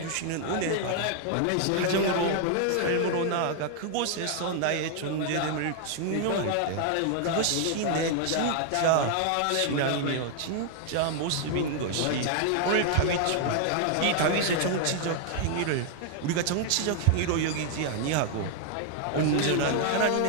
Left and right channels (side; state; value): both; different; correlation 0.00